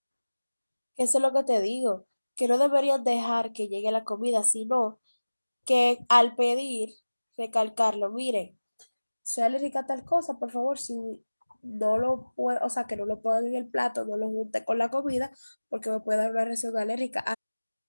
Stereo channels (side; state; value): both; inverted; correlation -1.00